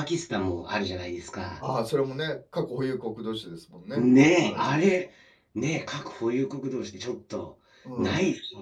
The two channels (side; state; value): both; identical; correlation 1.00